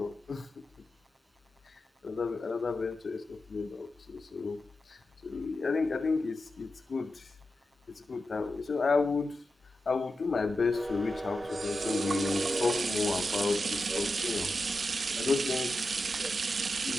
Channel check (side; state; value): both; normal; correlation 0.90